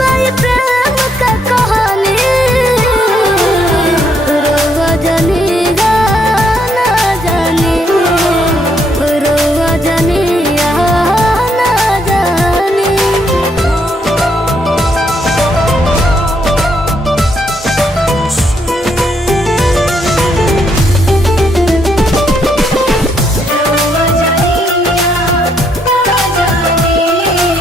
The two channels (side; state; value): both; normal; correlation 0.74